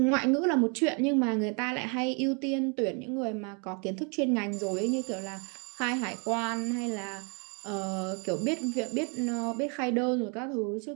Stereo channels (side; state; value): left; quieter; 35.7 dB